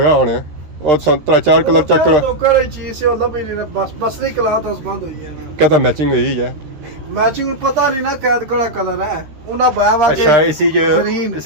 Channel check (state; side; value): late; left; 13 ms